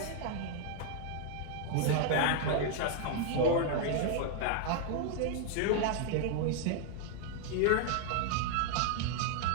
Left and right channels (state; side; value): different; both; correlation 0.00